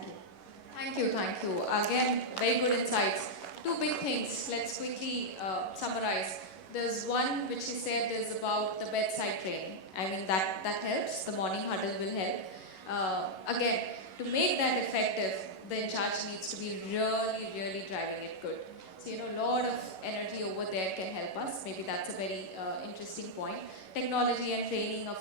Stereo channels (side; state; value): right; late; 11 ms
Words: you. Thank you, thank you. Again, very good insights. Two big things, let's quickly summarize. There's one which you said is about the bedside training. I mean, that helps, the morning huddle will help. Again, to make that effective, the in charge needs to be really driving it good. So, a lot of energy over there can help us. Maybe that's a very interesting point. Technology and training, of